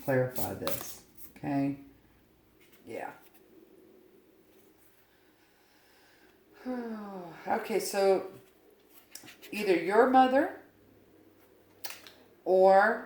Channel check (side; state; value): both; identical; correlation 1.00